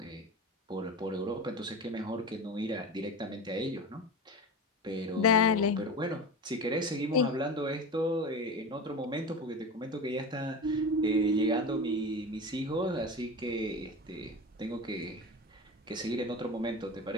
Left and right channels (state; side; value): normal; both; correlation 0.28